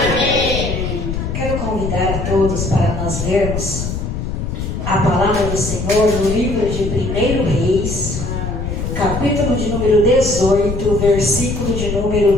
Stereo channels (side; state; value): left; noise; rumble, 4 dB below the sound